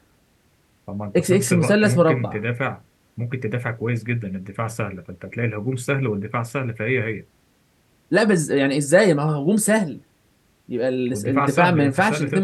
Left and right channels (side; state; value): both; identical; correlation 1.00